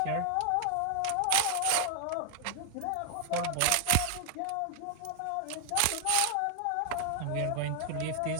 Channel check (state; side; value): different; both; correlation 0.00